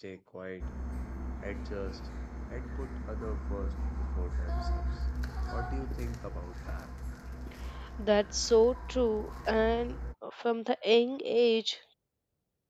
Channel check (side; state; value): both; identical; correlation 1.00